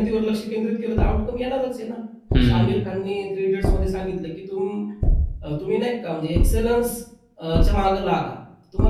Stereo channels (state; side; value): identical; both; correlation 1.00